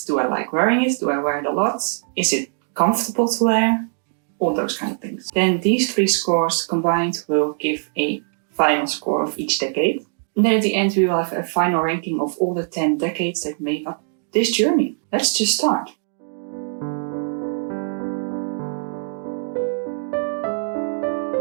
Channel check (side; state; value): left; silent; digital silence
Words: Do I like wearing it? Do I wear it a lot? Is it comfortable to wear? All those kind of things. Then these 3 scores combined will give a final score of each decade. And then at the end we will have a final ranking of all the 10 decades that made up this journey. Let's just start.